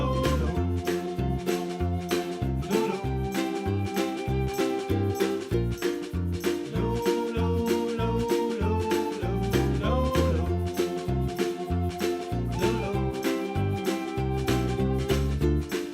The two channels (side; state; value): both; identical; correlation 1.00